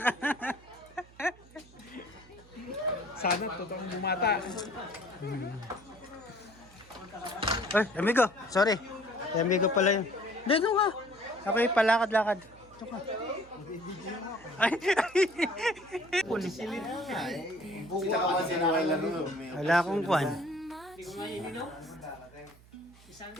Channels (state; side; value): noise; right; hum, 24 dB below the sound